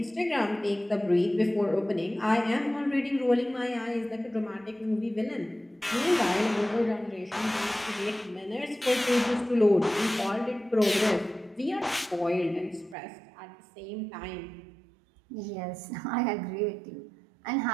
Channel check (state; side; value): drops out; left; at 13.0 s